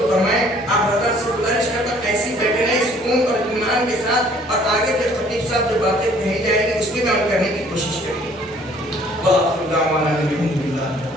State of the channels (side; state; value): both; normal; correlation 0.57